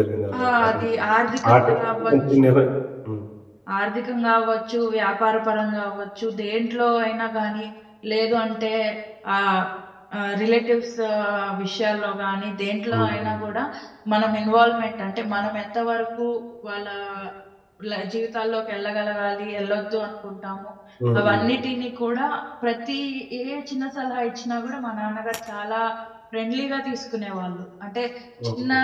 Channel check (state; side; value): identical; both; correlation 1.00